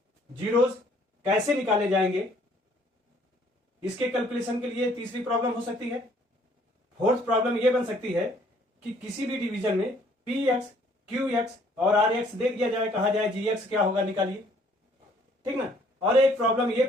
जीरोस कैसे निकाले जाएंगे, इसके कैलकुलेशन के लिए तीसरी प्रॉब्लम हो सकती है। फोर्थ प्रॉब्लम यह बन सकती है कि किसी भी डिवीजन में px, qx और rx दे दिया जाए, कहा जाए gx क्या होगा निकालिए, ठीक ना। और एक प्रॉब्लम ये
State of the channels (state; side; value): normal; both; correlation 0.61